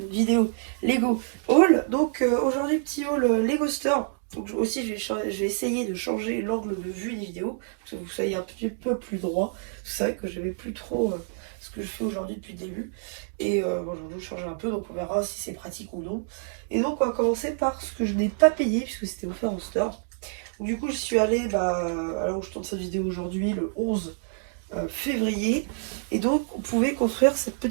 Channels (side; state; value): left; silent; digital silence